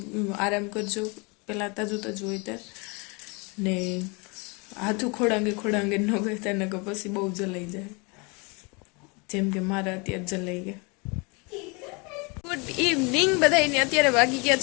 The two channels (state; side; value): quieter; right; 30.1 dB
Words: આરામ કરજો પહેલાં તાજું હોય ત્યાં ને હાથું ખોડાંગે ન કરતા ને પછી બહુ જલાઈ જાય, જેમ કે મારા અત્યારે જલાઈ ગયા. ગુડ ઇવનિંગ બધાને. અત્યારે વાગી ગયા